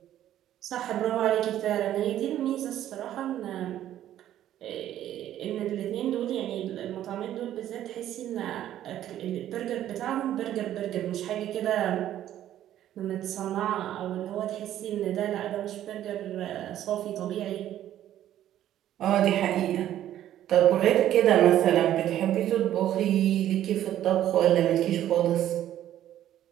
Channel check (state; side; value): quieter; left; 12.0 dB